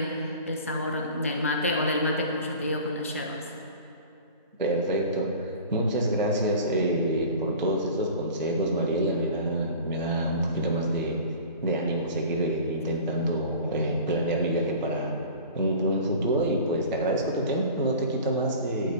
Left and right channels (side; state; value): both; inverted; correlation -0.40